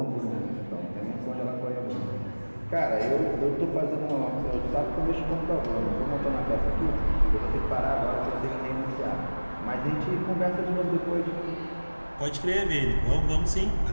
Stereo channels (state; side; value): inverted; both; correlation -1.00